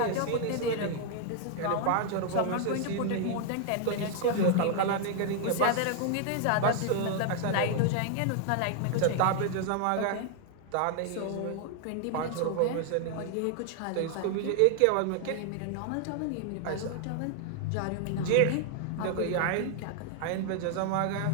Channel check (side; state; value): both; different; correlation 0.00